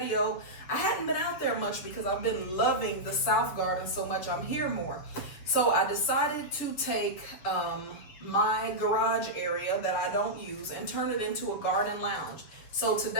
I hadn't been out there much because I've been loving the South Garden so much. I'm here more. So I decided to take my garage area that I don't use and turn it into a garden lounge. So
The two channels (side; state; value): right; late; 7.0 ms